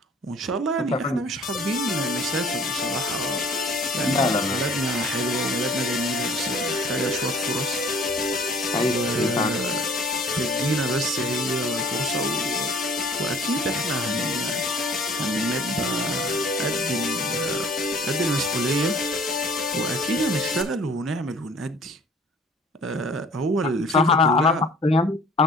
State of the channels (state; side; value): normal; both; correlation 0.52